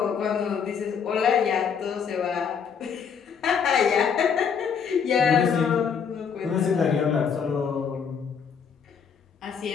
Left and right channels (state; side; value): quieter; right; 6.8 dB